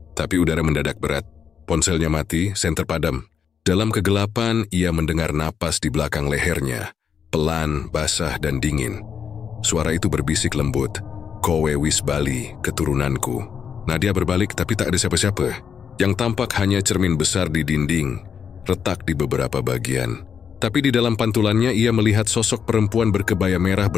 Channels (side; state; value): right; quieter; 7.2 dB